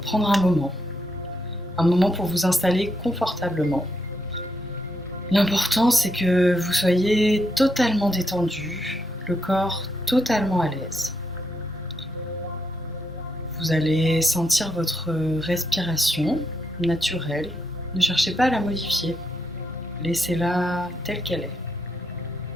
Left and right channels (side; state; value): both; normal; correlation 0.80